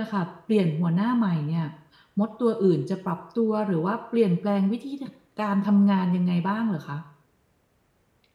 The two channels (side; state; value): both; identical; correlation 1.00